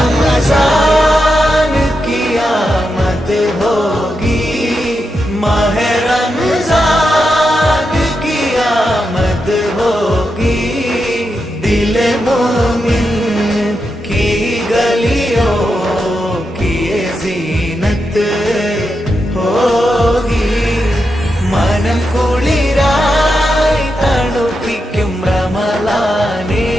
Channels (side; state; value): both; normal; correlation 0.87